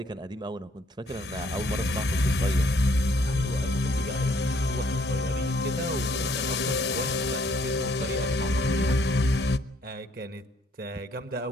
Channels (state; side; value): normal; both; correlation 0.65